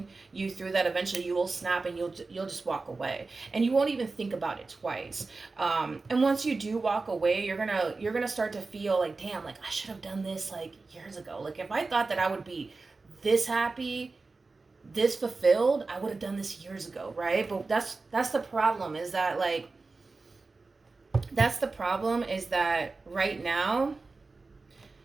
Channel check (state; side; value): quieter; left; 3.8 dB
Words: you through, that eventually you will snap and you'll just walk away. And you won't even think about it twice. And once you do walk away, you're going to start to feel like, damn, like I should have done this like years ago. Like if I thought that I would be this happy, this fulfilled, I would have done this years ago, right? But that's the problem, is that right now,